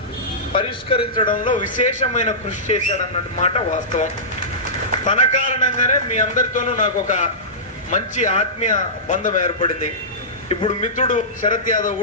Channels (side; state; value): both; normal; correlation -0.18